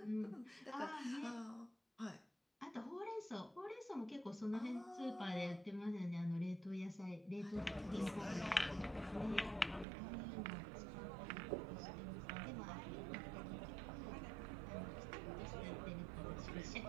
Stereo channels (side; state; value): left; drops out; at 9.9 s